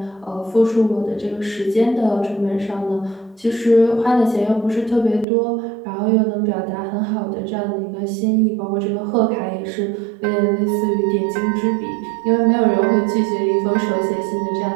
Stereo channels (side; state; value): left; drops out; at 5.2 s